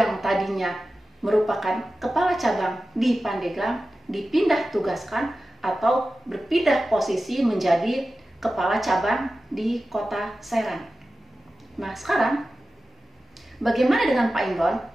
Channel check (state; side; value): normal; both; correlation 0.94